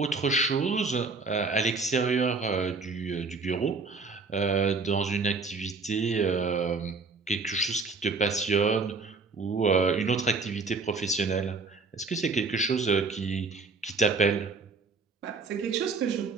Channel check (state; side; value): quieter; left; 4.3 dB